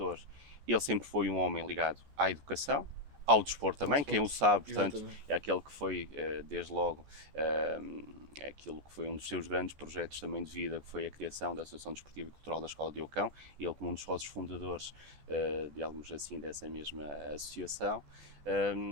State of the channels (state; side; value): late; left; 14 ms